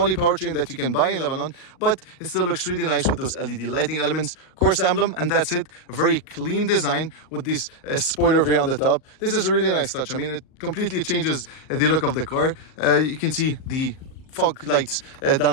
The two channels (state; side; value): late; right; 38 ms